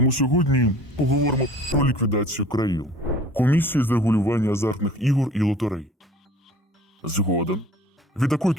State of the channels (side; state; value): both; normal; correlation 0.47